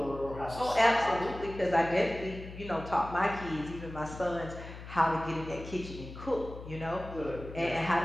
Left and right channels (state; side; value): noise; left; hum, 12 dB below the sound